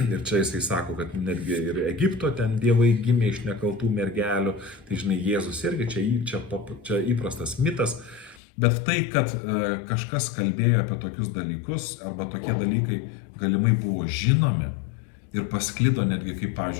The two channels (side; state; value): right; drops out; at 8.4 s